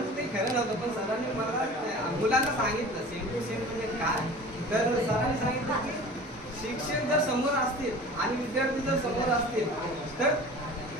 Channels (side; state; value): both; normal; correlation 0.40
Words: ते खरं नव्हतं. पण सरांनी मला मुलांना सांगितलं सेम टू सेम म्हणजे काय. तर सरांनी सांगितलं की शिक्षक जर समोर असतील आणि विद्यार्थी जर समोर असतील तर